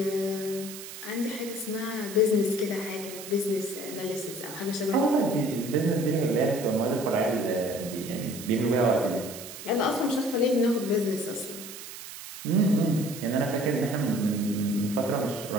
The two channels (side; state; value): right; noise; hiss, 12 dB below the sound